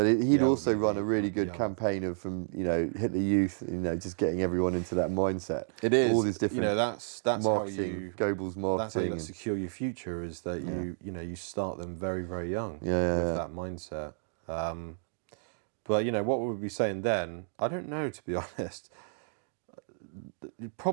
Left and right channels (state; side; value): silent; left; digital silence